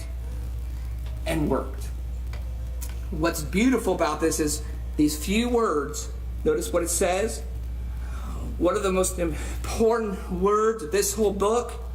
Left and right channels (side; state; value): both; identical; correlation 1.00